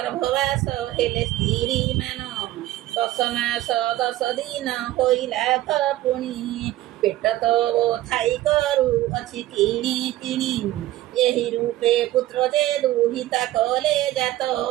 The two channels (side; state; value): left; quieter; 15.7 dB